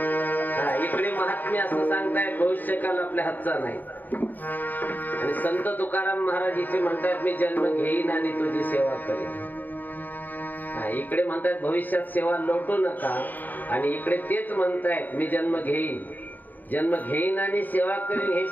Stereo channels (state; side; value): late; right; 0.086 ms